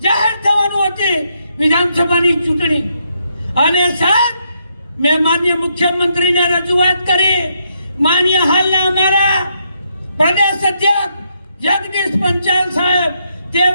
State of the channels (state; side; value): inverted; both; correlation -0.77